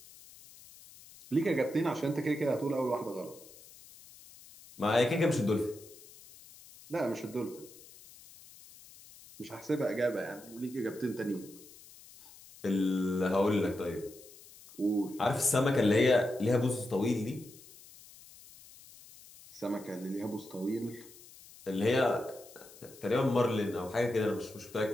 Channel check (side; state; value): left; noise; hiss, 21 dB below the sound